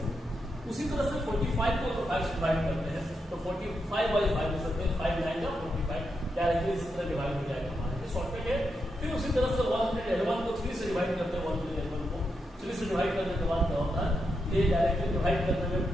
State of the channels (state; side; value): normal; both; correlation 0.84